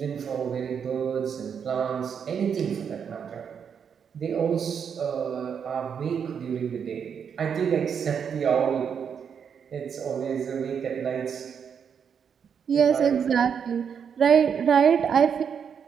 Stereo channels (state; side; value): quieter; left; 7.3 dB